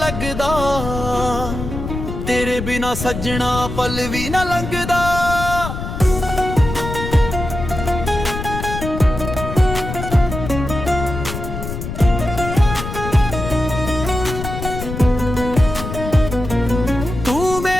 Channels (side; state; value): left; noise; rumble, 6 dB below the sound